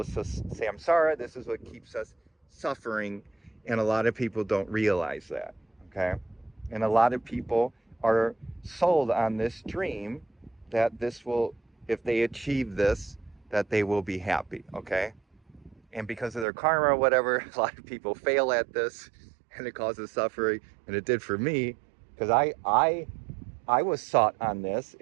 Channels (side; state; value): left; drops out; at 16.4 s